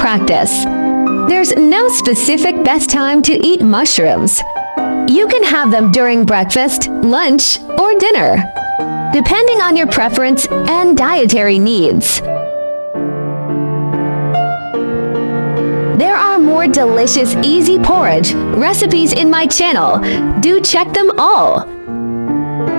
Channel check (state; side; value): inverted; both; correlation -1.00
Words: There's no specific best time to eat mushrooms. You can have them during breakfast, lunch, or dinner, depending on your preference and dietary needs. There are more delicious, easy porridge recipes in my channel. Do check them all.